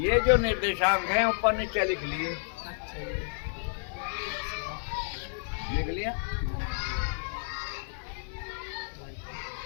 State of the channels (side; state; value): right; silent; digital silence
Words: जो निर्देशांक हैं ऊपर नीचे लिख लिए, लिख लिया।